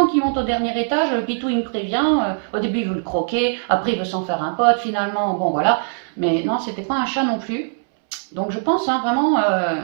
qu'ils montent au dernier étage, le Pitou, il me prévient. Au début, il veut le croquer, après, il veut s'en faire un pote, finalement, bon, voilà. Mais non, c'était pas un chat non plus. Donc je pense vraiment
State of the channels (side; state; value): left; silent; 63 dB below the other